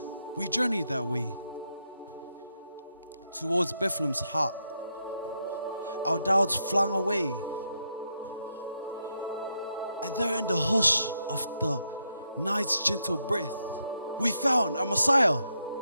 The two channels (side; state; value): both; inverted; correlation -0.81